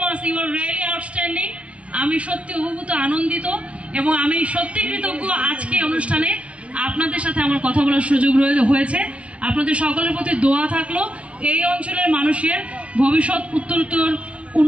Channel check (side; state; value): left; late; 0.062 ms